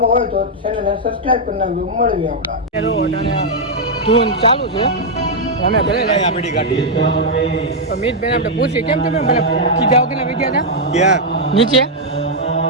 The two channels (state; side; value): normal; both; correlation -0.03